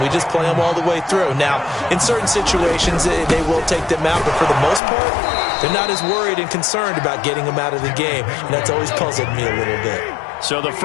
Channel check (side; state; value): right; drops out; at 4.8 s